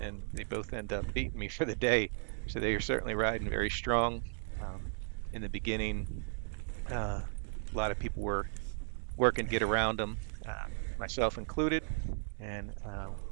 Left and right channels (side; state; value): left; silent; 54 dB below the other